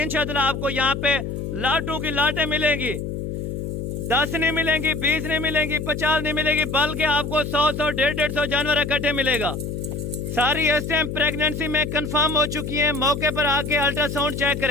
आपको यहाँ पे लाटों की लाटें मिलेंगी। 10 नहीं मिलेंगी, 20 नहीं मिलेंगी, 50 नहीं मिलेगी, बल्कि आपको 100, 150 जानवर इकट्ठे मिलेगा। सारी इस टाइम प्रेगनेंसी में कंफर्म हो चुकी हैं। मौके पर आके अल्ट्रासाउंड चेक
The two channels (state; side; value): noise; left; hum, 5 dB below the sound